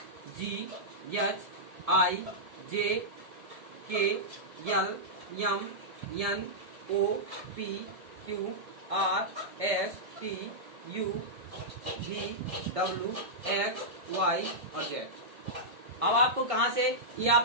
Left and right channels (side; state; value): left; late; 1.6 ms